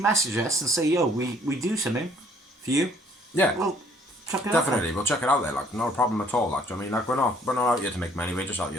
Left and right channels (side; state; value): both; normal; correlation 0.60